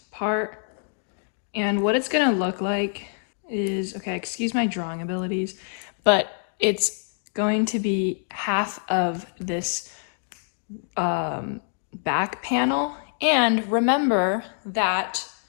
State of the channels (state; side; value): silent; right; digital silence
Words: part. And what it's gonna look like is, okay, excuse my drawing abilities, but it's going to be half of this back panel. And remember that